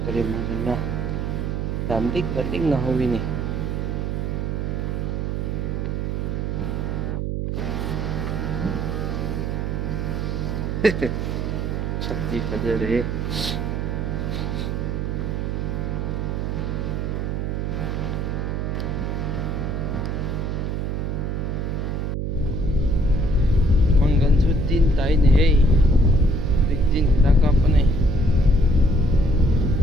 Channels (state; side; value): noise; right; hum, 1 dB below the sound